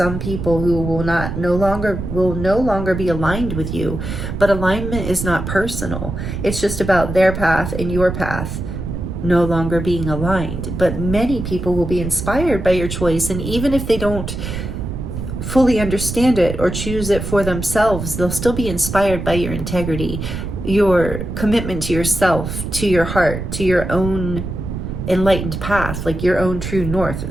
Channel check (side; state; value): right; noise; rumble, 5 dB below the sound